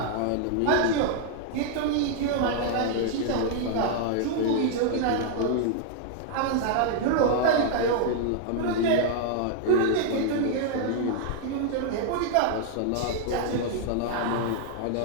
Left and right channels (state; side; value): different; both; correlation 0.00